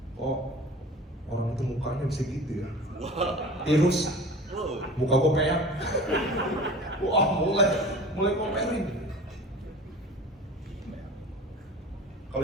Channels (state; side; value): normal; both; correlation 0.39